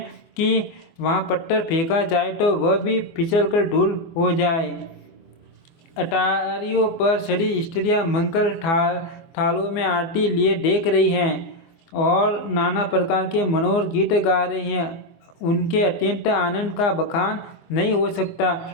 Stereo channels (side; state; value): right; late; 24 ms